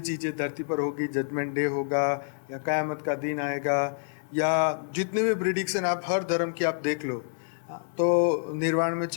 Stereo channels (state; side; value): silent; right; digital silence